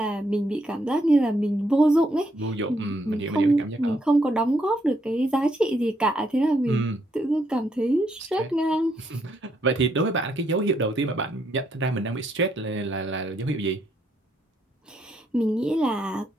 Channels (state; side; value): normal; both; correlation 0.75